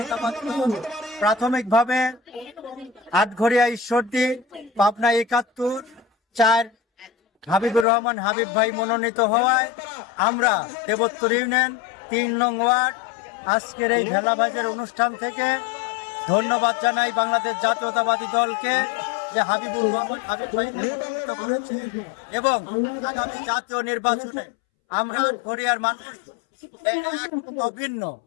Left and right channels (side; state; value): right; drops out; at 7.9 s